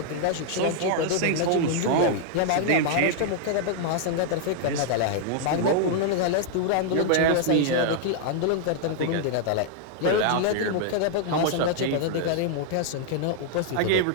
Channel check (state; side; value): different; both; correlation -0.01